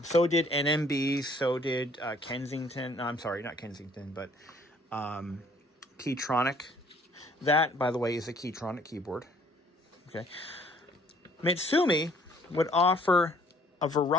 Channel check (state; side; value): normal; both; correlation 0.59